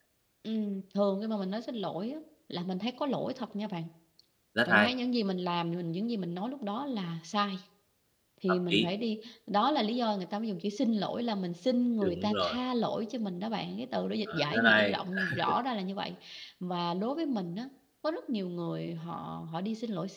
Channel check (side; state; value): both; identical; correlation 1.00